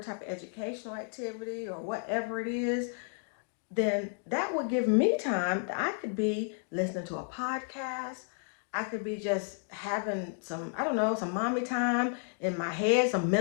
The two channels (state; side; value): silent; right; 56 dB below the other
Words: of educational activity or whatever it is, then that would give me time that I could be listening to a podcast. I could be just having some, I don't know, some mommy time in my head, some